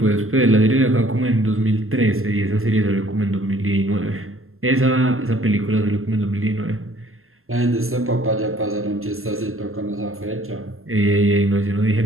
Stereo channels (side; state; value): left; late; 0.61 ms